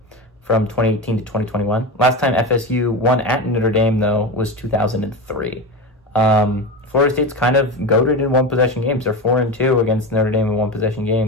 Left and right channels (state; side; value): normal; both; correlation 0.22